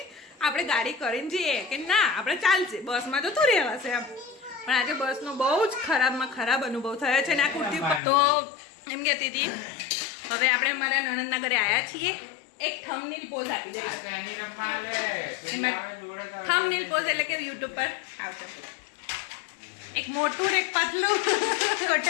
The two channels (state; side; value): drops out; right; at 8.0 s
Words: આપણે ગાડી કરીને જઈએ કે ના આપણે ચાલશે, બસમાં જતું રહેવાશે એમ. પણ આજે બસનો બહુ જ ખરાબમાં ખરાબ અનુભવ થયો છે. ને આ કુર્તી તો એમ કહેતી હતી હવે આપણે અમારા નણંદના ઘરે આવ્યા છીએ. એક થંબનેલ પોઝ આપી દે. થંબનેલ પોઝ એટલે કે યુટ્યુબ પર આવશે. એક મોટું ને એક પતલું.